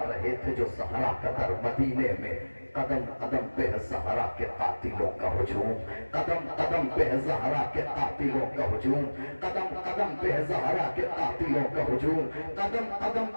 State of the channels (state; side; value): inverted; both; correlation -1.00